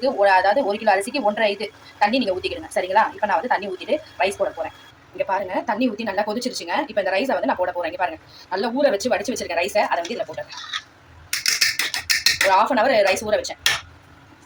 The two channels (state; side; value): identical; both; correlation 1.00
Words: அதாவது 1 கிலோ அரிசிக்கு 1.5 இது தண்ணி நீங்கள் ஊற்றிக்கிடுங்க. சரிங்களா, இப்போ நான் வந்து தண்ணி ஊற்றிட்டு ரைஸ் போட போகிறேன். இங்கே பாருங்க, தண்ணி ஊற்றி நல்லா கொதிச்சிருச்சுங்க. இப்போ இந்த ரைஸை வந்து நான் போட போகிறேன். இங்கே பாருங்க, நல்லா ஊற வச்சு வடிச்சு வச்சிருக்கேன் ரைஸை. அதை வந்து இதில் போட்டுறேன். ஒரு 1/2 hour ரைஸ் ஊற வச்சேன்.